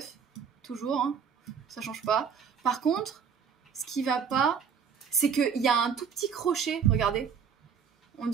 Toujours, hein, ça change pas. Par contre, ce qui va pas, c'est qu'il y a un tout petit crochet, regardez. On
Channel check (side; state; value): left; quieter; 6.8 dB